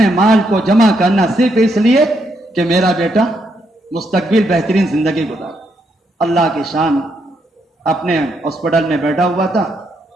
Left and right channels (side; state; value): both; normal; correlation 0.77